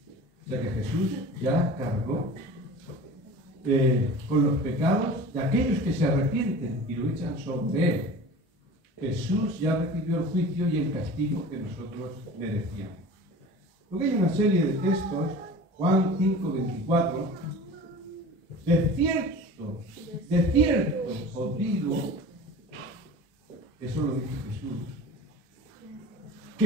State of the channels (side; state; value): both; normal; correlation 0.39